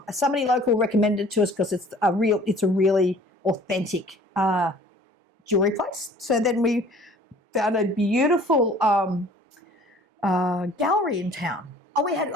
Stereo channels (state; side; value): normal; both; correlation 0.51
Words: Somebody local recommended it to us because it's a really authentic jewellery place. So then we found a beautiful gallery in town. We